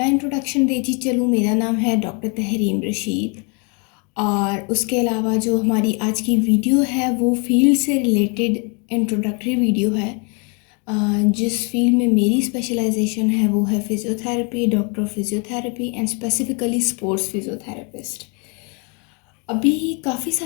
इंट्रोडक्शन देती चलूँ। मेरा नाम है डॉक्टर तहरीम रशीद और उसके अलावा जो हमारी आज की वीडियो है वो फील्ड से रिलेटेड इंट्रोडक्टरी वीडियो है। जिस फील्ड में मेरी स्पेशलाइजेशन है वो है physiotherapy, doctor of physiotherapy and specifically sports physiotherapist. अभी काफ़ी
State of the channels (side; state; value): right; quieter; 34.1 dB